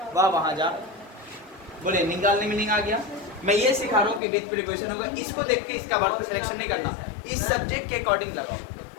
वह वहां जा। बोले निकालने मीनिंग आ गया। मैं ये सिखा रहा हूँ कि विद प्रीपोजिशन होगा, इसको देख के इसका वर्ब सिलेक्शन नहीं करना, इस सब्जेक्ट के अकॉर्डिंग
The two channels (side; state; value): right; drops out; at 4.2 s